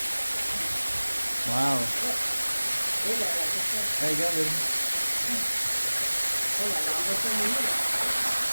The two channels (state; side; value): inverted; both; correlation -1.00